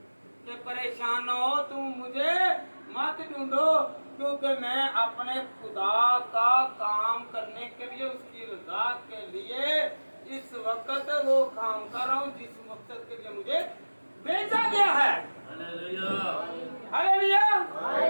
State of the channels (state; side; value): inverted; both; correlation -1.00